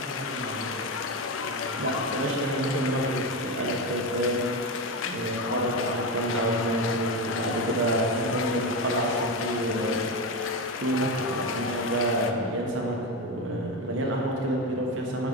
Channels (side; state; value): both; normal; correlation 0.16